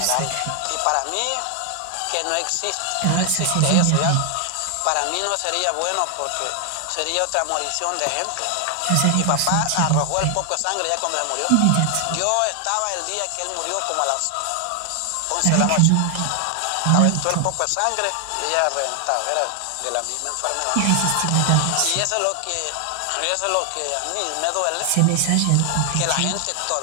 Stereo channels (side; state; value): both; different; correlation 0.00